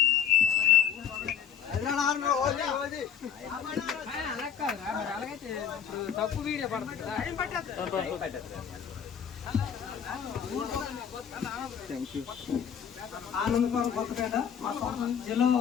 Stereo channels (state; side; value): quieter; right; 8.3 dB